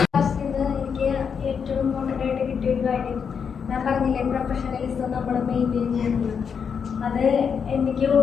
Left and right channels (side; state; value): right; quieter; 6.7 dB